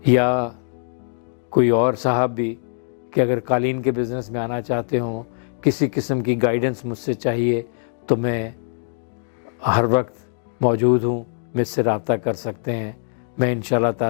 یا کوئی اور صاحب بھی کہ اگر قالین کے بزنس میں آنا چاہتے ہوں، کسی قسم کی گائیڈنس مجھ سے چاہیے تو میں ہر وقت موجود ہوں، مجھ سے رابطہ کر سکتے ہیں. میں انشاءاللہ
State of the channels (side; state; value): right; silent; digital silence